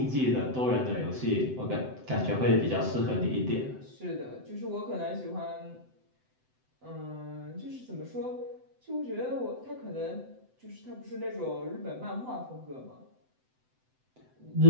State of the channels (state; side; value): late; left; 7.8 ms